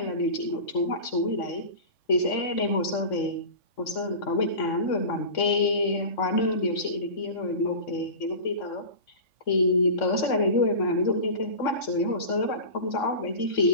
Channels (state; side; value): late; right; 3.6 ms